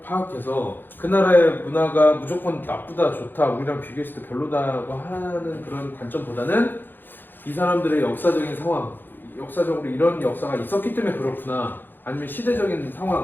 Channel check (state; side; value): late; right; 0.093 ms